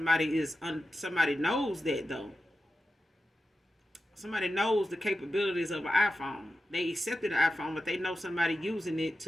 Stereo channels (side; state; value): both; normal; correlation 0.91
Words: knows that though. Somebody knows the capabilities of an iPhone. They accepted the iPhone, but they know somebody using it